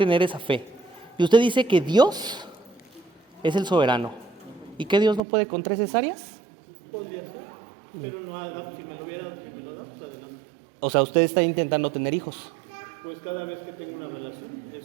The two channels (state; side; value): drops out; left; at 5.2 s